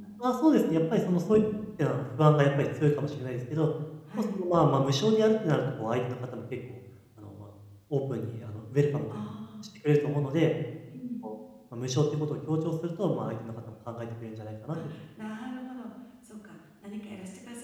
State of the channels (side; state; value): both; identical; correlation 1.00